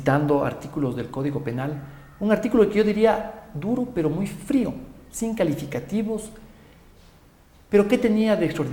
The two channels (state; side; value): identical; both; correlation 1.00